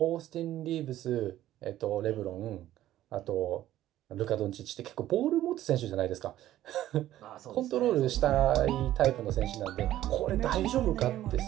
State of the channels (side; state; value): left; quieter; 13.5 dB